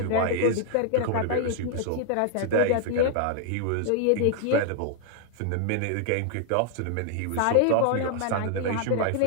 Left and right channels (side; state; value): both; different; correlation 0.00